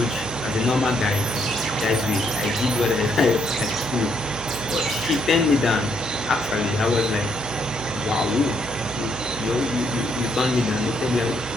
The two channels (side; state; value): right; noise; hum, 13 dB below the sound